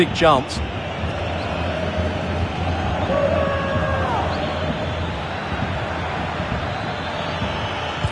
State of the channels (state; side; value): identical; both; correlation 1.00